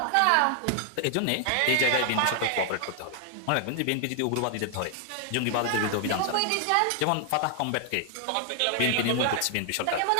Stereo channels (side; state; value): both; different; correlation 0.00